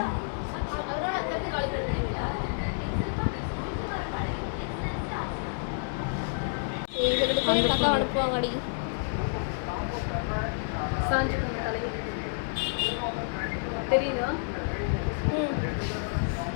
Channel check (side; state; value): right; silent; digital silence